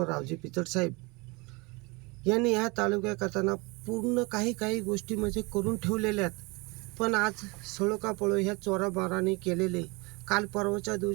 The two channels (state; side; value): quieter; left; 26.8 dB